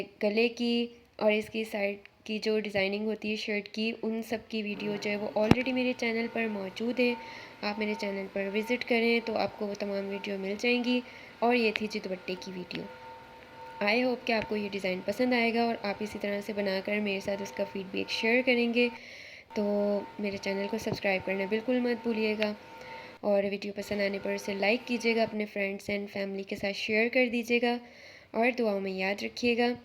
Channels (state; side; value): identical; both; correlation 1.00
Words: गले की और इसकी साइड की जो डिज़ाइनिंग होती है शर्ट की, उन सब की वीडियो जो है वो ऑलरेडी मेरे चैनल पर मौजूद है। आप मेरे चैनल पर विज़िट करें तो आपको वो तमाम वीडियो मिल जाएंगी। और ये थी जी दुपट्टे की वीडियो। आई होप कि आपको ये डिज़ाइन पसंद आएगा और आप इसी तरह से बनाकर मेरे साथ उसका फ़ीडबैक शेयर करेंगे तो मेरे चैनल को सब्सक्राइब करना बिल्कुल मत भूलिएगा, और वीडियो पसंद आने पर उसे लाइक कीजिएगा, अपने फ्रेंड्स एंड फैमिली के साथ शेयर कर दीजिएगा, और दुआओं में याद रखिएगा।